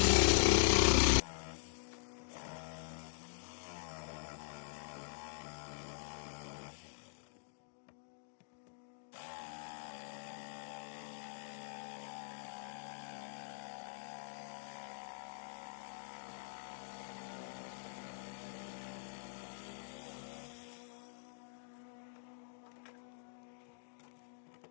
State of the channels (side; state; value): right; silent; digital silence